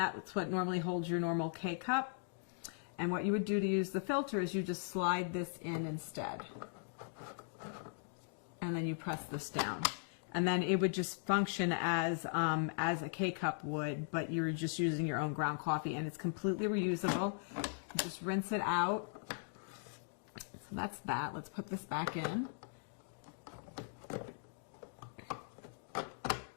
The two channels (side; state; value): right; silent; digital silence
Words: what normally holds your normal K-cup. And what you would do to use the filter is you just slide this in instead. And then you press this down. And then it would just function as a K-cup would, but you're just using your own ground coffee, and it's completely reusable. You just rinse it out. So that's that. Let's put this back in.